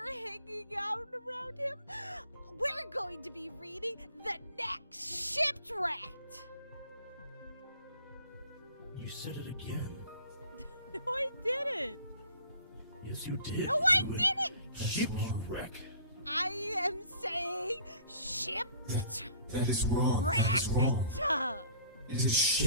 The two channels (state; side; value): inverted; both; correlation -0.50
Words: hanging out around him, we're going to be reading the next Shipwrecked. You said it again. No, I didn't. Yes, you did. No, I didn't. Shipwreck. I am saying ship. That is wrong. That is wrong. It is